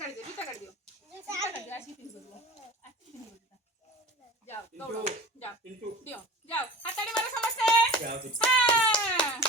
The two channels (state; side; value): normal; both; correlation 0.37